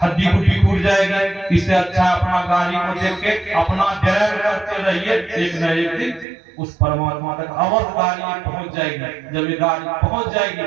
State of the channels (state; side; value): drops out; left; at 6.2 s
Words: हड्डी गुड्डी टूट जाएगी। इससे अच्छा अपना गाड़ी को देख के अपना ड्राइव करते रहिए, एक न एक दिन उस परमात्मा तक अवश्य गाड़ी पहुंच जाएगी। जब ये गाड़ी पहुंच जाएगी